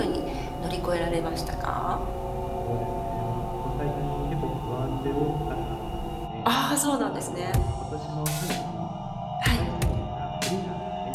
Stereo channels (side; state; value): both; identical; correlation 1.00